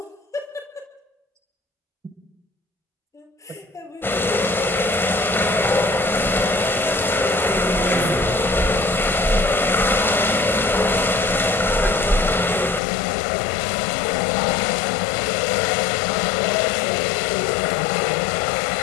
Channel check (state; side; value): drops out; right; at 12.8 s